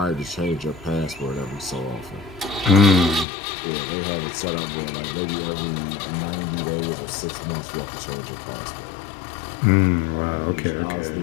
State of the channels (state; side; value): drops out; right; at 3.2 s